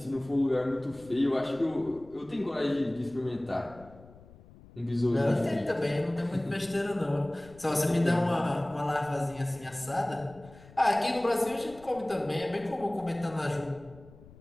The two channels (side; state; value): left; noise; rumble, 22 dB below the sound